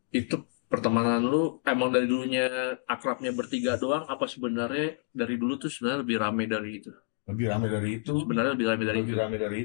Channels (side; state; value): right; silent; digital silence